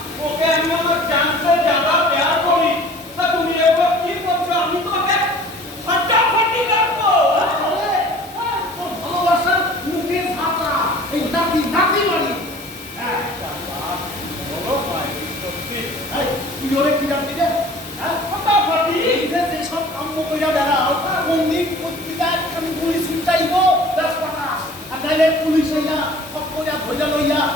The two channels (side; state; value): both; normal; correlation 0.47